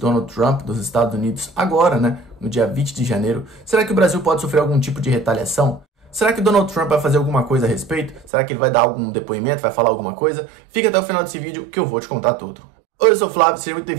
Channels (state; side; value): drops out; left; at 8.3 s